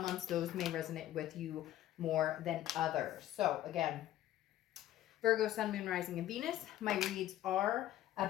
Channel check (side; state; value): right; quieter; 13.2 dB